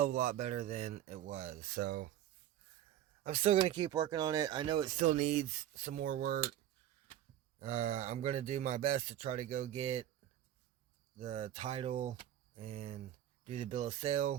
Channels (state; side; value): quieter; left; 11.8 dB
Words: of a lot better than it was. So, I'm still going to keep working on it. I know it still needs some more work. I'm going to do my best to try to go get the title and do the bill of